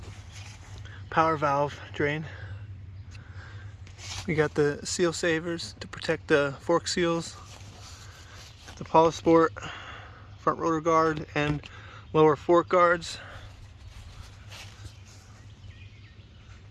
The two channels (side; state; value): both; identical; correlation 1.00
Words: power valve drain. We got the seal savers to protect the fork seals, the Polysport front rotor guard and lower fork guards.